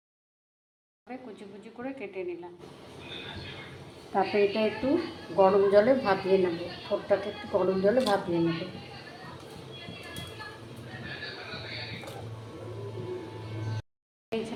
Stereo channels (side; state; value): both; identical; correlation 1.00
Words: কুচি কুচি করে কেটে নিলাম। তারপরে এটা একটু গরম জলে ভাপিয়ে নেব, থোড়টাকে একটু গরম জলে ভাপিয়ে নেব।